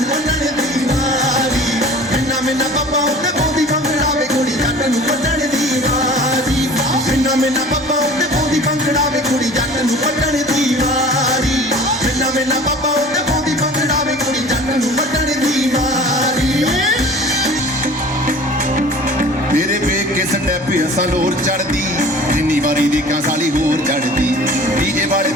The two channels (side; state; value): both; normal; correlation 0.43